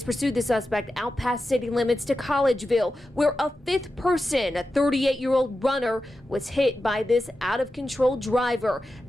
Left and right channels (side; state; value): both; normal; correlation 0.91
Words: pursued the suspect out past city limits to Collegeville, where a fifth person, a 38-year-old runner, was hit by this out-of-control driver.